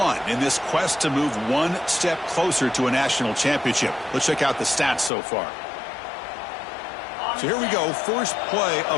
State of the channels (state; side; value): drops out; right; at 5.1 s